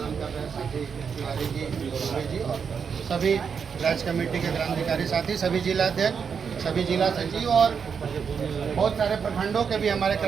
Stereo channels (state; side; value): quieter; left; 6.5 dB